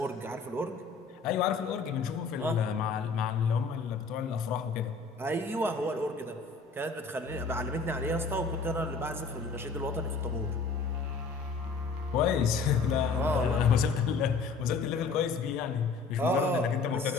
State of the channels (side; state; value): right; quieter; 4.4 dB